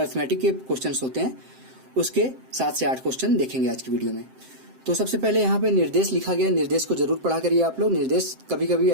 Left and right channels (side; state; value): left; late; 7.7 ms